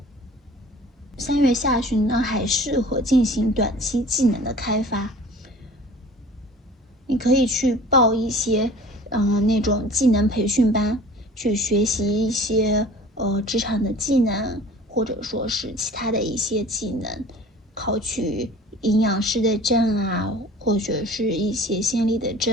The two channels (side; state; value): both; normal; correlation 0.45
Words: 3月下旬呢，还适合进行短期技能的开发。你可以去报一些那种技能培训班，去学习一些职场的技能，或者说是其他的一些技能，考取营养师的证啊，或者是一些心理的